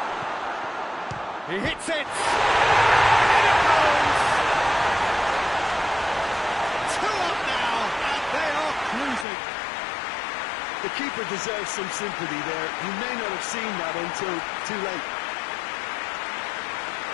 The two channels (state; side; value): drops out; right; at 9.2 s